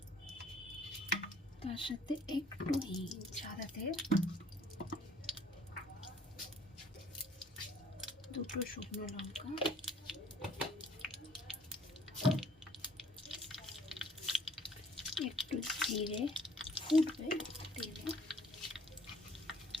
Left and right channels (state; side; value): normal; both; correlation 0.59